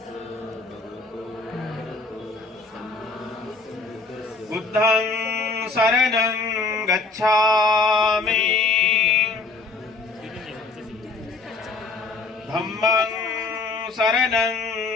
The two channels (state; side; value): quieter; right; 3.9 dB